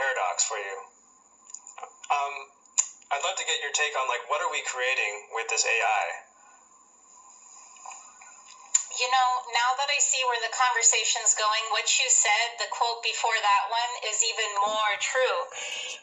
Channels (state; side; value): identical; both; correlation 1.00